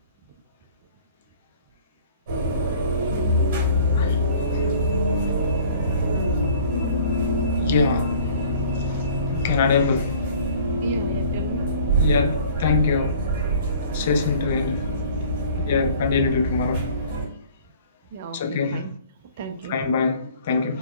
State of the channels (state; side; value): inverted; both; correlation -0.50